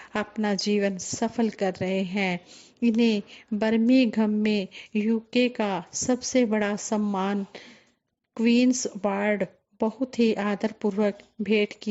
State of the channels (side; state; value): both; identical; correlation 1.00